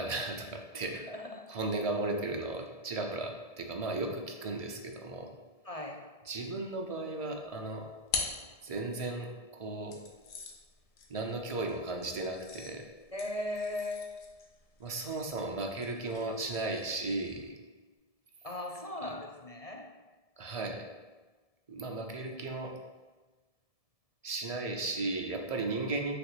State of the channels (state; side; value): late; right; 1.7 ms